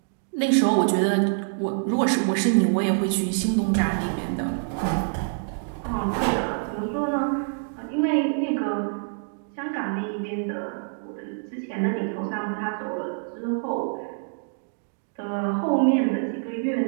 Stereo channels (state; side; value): silent; left; digital silence